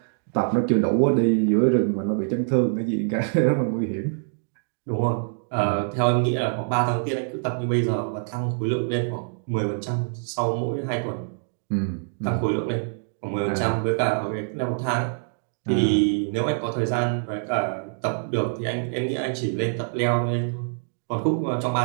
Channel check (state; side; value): silent; left; digital silence